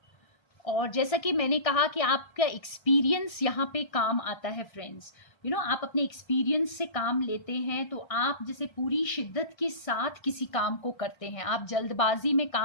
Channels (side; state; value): right; late; 1.3 ms